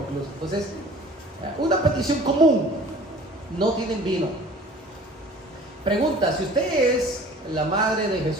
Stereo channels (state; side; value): normal; both; correlation 0.47